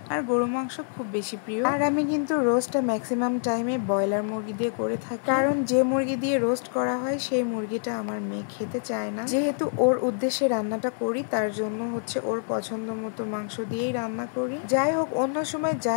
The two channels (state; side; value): silent; right; digital silence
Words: আর গরু মাংস খুব বেশি প্রিয়। আর আমি কিন্তু রোস্টটা ম্যাক্সিমাম টাইমে ব্রয়লার মুরগি দিয়ে করে থাকি, কারণ যে মুরগি দিয়ে রোস্ট করা হয় সেই মুরগিটা আমার মেয়ে খেতে চায় না। যেহেতু ওর উদ্দেশ্যে রান্নাটা করি, তার জন্য ওর পছন্দ মতো মাংস দিয়েই রান্না করি। যাই হোক, অন্য সময়